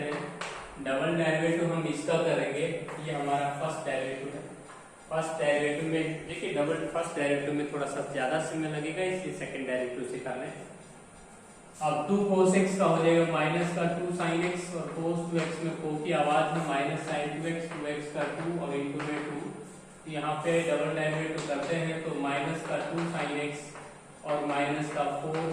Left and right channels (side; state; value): both; identical; correlation 1.00